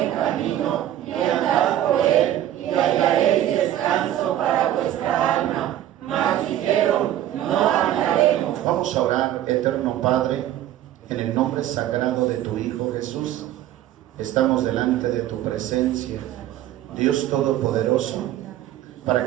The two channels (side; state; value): left; quieter; 12.5 dB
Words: camino, y andad por él, y hallaréis descanso para vuestra alma. Mas dijeron, no andaremos. Vamos a orar. Eterno Padre, en el nombre sagrado de tu Hijo Jesús, estamos delante de tu presencia, Dios Todopoderoso, para